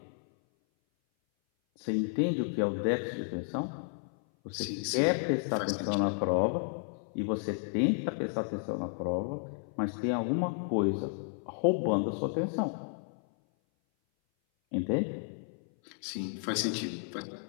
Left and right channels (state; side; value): silent; right; 56 dB below the other